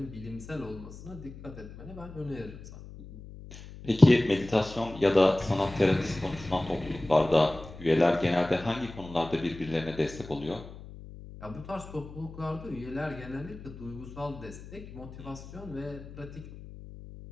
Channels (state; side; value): noise; left; hum, 15 dB below the sound